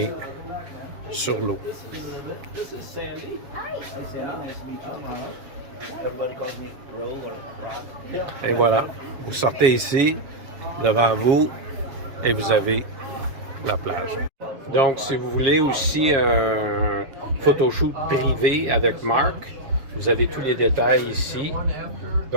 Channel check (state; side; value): late; left; 7.4 ms